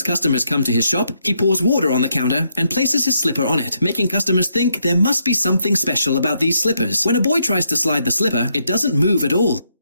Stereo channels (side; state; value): both; inverted; correlation -0.76